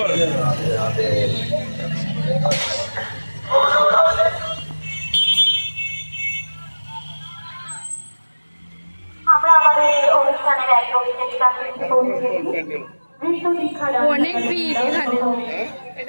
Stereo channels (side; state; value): both; inverted; correlation -1.00